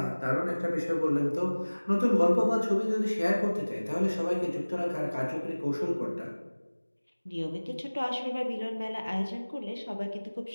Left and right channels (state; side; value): inverted; both; correlation -1.00